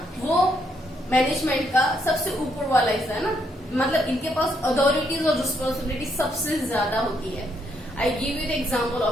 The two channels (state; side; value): normal; both; correlation 0.75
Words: वो management का सबसे ऊपर वाला हिस्सा है ना. मतलब इनके पास अथॉरिटीज और रिस्पॉन्सिबिलिटी सबसे ज्यादा होती है. I give you the example